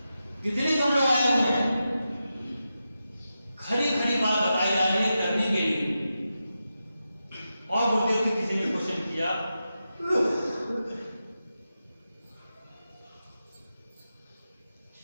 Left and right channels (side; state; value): both; inverted; correlation -0.90